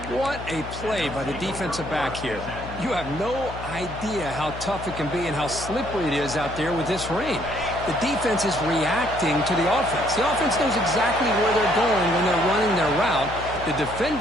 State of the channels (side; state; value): left; noise; hum, 11 dB below the sound